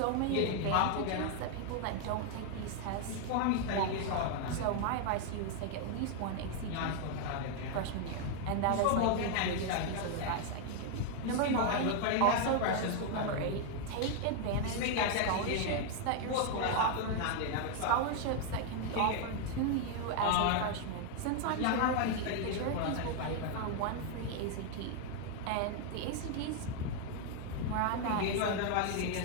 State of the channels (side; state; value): both; different; correlation 0.00